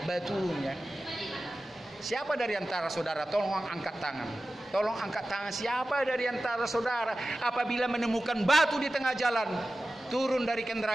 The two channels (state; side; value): normal; both; correlation 0.95